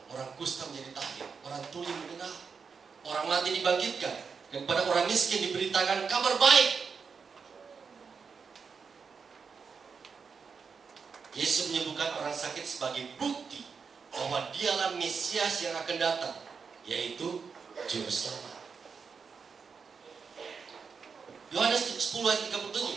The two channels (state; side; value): quieter; left; 5.7 dB